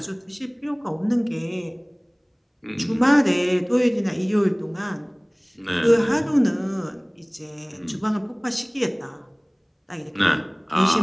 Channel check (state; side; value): identical; both; correlation 1.00